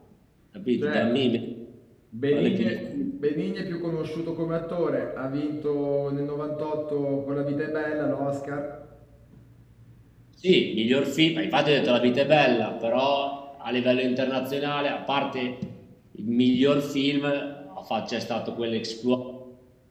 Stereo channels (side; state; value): both; identical; correlation 1.00